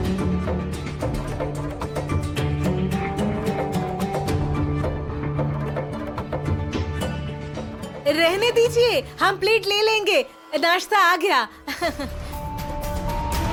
रहने दीजिए, हम प्लेट ले लेंगे, नाश्ता आ गया।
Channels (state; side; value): identical; both; correlation 1.00